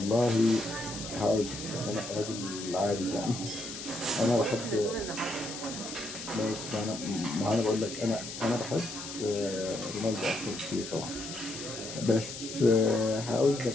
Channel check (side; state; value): left; noise; hiss, 9 dB below the sound